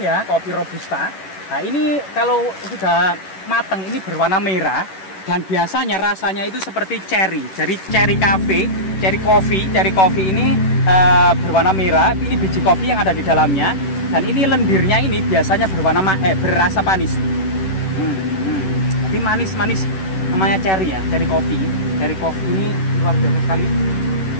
kopi robusta. Nah ini kalau sudah matang ini berwarna merah. Dan biasanya rasanya itu seperti cherry. Jadi cherry coffee ini berwarna merah. Ini biji kopi yang ada di dalamnya. Dan ini lendirnya ini biasanya berasa manis. Tapi manis namanya cherry ya, cherry kopi ini luar biasa sekali.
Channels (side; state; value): right; late; 11 ms